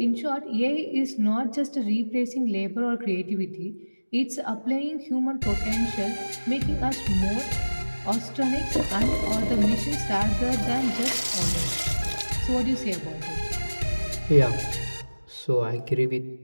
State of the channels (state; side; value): inverted; both; correlation -1.00